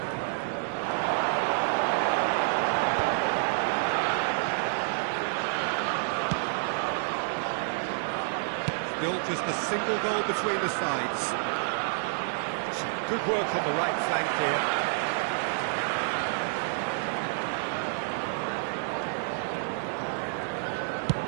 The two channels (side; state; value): left; silent; digital silence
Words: Still just a single goal between the sides. Some good work on the right flank here.